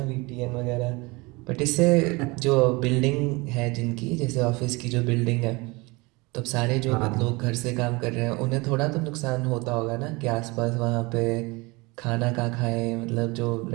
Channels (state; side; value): quieter; left; 25.1 dB